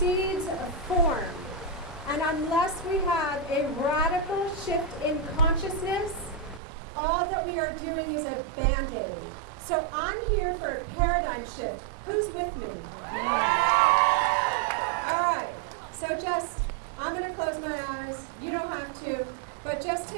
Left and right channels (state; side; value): drops out; left; at 6.6 s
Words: a form. And unless we have a radical shift in consciousness, all that we are doing is a Band-Aid. So I'm here for a paradigm shift. Who's with me? All right. So I'm going to close my eyes. You don't have to. But just